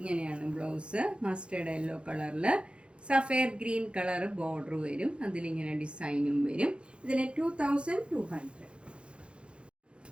ബ്ലൗസ്. മസ്റ്റേർഡ് യെല്ലോ കളറിൽ സഫയർ ഗ്രീൻ കളർ ബോർഡർ വരും. അതിലിങ്ങനെ ഡിസൈനും വരും. ഇതിന് 2200.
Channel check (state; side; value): late; left; 0.057 ms